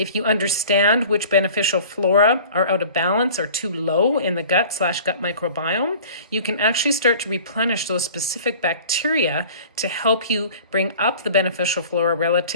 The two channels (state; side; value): inverted; both; correlation -0.44